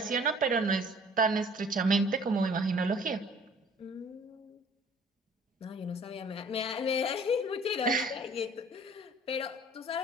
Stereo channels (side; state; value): both; normal; correlation 0.52